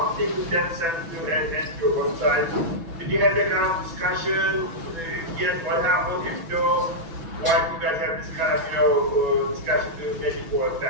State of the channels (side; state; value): left; late; 6.1 ms